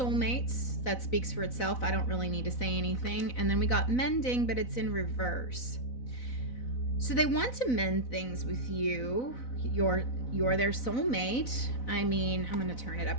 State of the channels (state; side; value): late; right; 4.0 ms